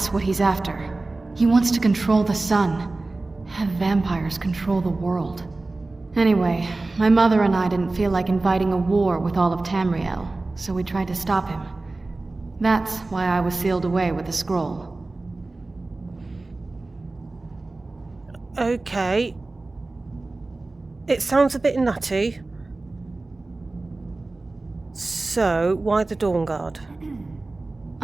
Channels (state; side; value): quieter; left; 3.2 dB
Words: what he's after. He wants to control the sun. Have vampires control the world. Anyway, my mother and I didn't feel like inviting a war with all of Tamriel, so we tried to stop him. That's why I was sealed away with the scroll. Okay. it sounds a bit nutty. So, why the Dawnguard?